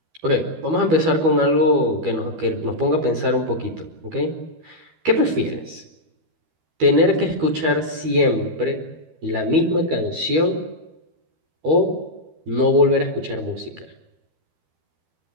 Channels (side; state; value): left; late; 12 ms